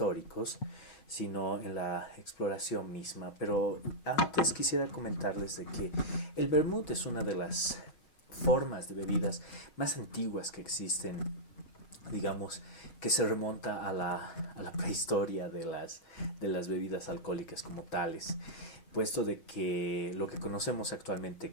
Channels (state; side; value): late; right; 5.9 ms